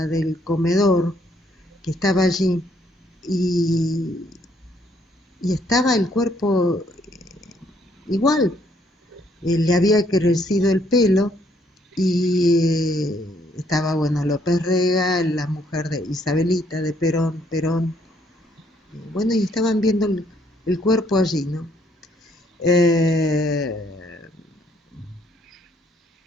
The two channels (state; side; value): normal; both; correlation 0.68